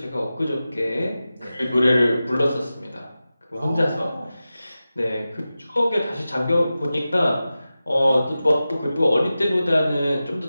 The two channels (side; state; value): both; inverted; correlation -0.94